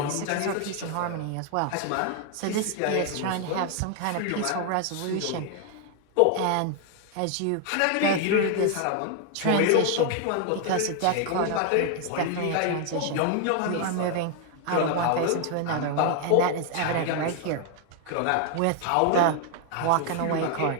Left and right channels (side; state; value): both; different; correlation 0.00